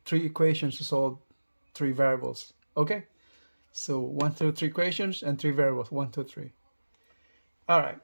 3 equations to solve 3 variables. Okay, so 1 through 3 equations and 3 variables, 1, 2, 3. All right,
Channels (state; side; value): inverted; both; correlation -1.00